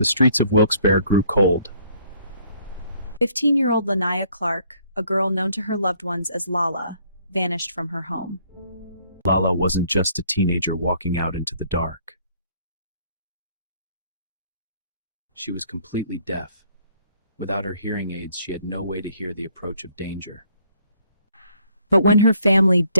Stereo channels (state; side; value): inverted; both; correlation -0.63